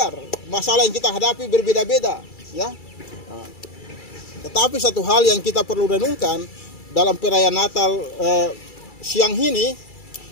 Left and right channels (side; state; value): right; late; 2.3 ms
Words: Masalah yang kita hadapi berbeda-beda ya. Tetapi satu hal yang kita perlu renungkan dalam perayaan Natal siang ini,